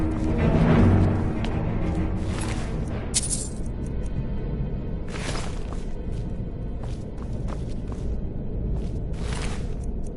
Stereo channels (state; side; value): identical; both; correlation 1.00